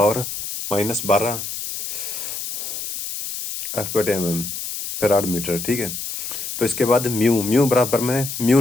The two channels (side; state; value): left; noise; hiss, 6 dB below the sound